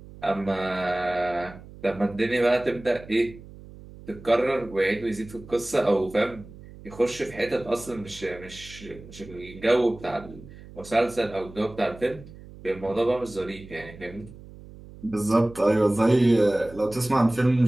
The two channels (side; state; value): right; noise; hum, 18 dB below the sound